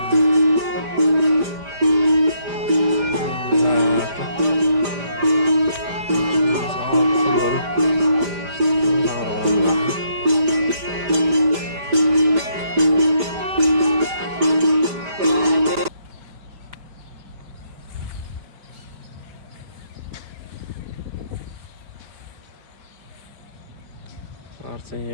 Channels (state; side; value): late; left; 5.0 ms